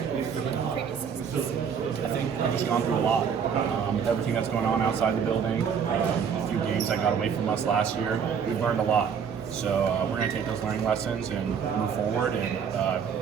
than previous seasons? I think I've just gone through a lot. With everything that's going on outside the building, a few games that got away from us last year, we've learned a lot. So we're going to take those learning lessons and move forward, and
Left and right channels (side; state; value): left; quieter; 7.1 dB